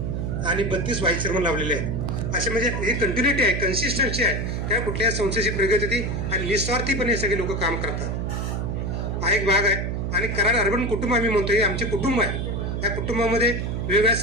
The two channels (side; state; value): right; noise; hum, 2 dB below the sound